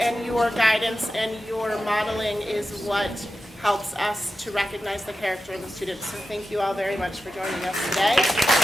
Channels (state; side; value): normal; both; correlation 0.92